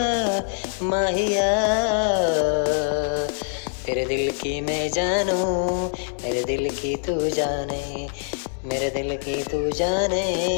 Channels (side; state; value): right; silent; 63 dB below the other